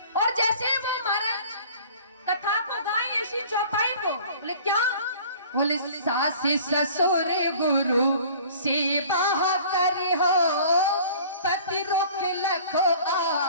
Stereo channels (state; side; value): inverted; both; correlation -0.48